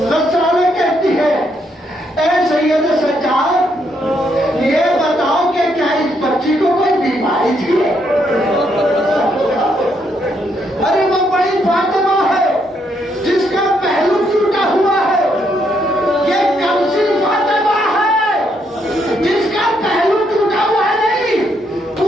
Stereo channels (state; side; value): normal; both; correlation 0.75